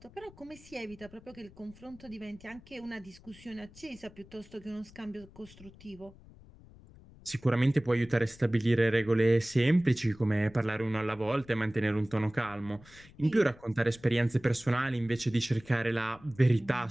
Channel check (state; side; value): noise; left; rumble, 22 dB below the sound